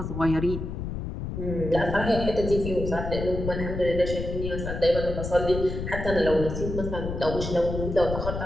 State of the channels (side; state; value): left; noise; rumble, 5 dB below the sound